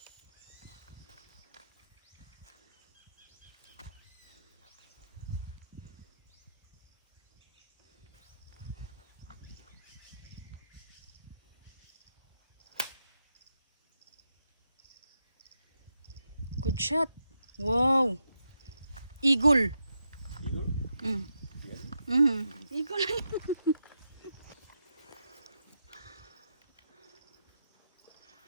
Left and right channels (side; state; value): both; inverted; correlation -0.84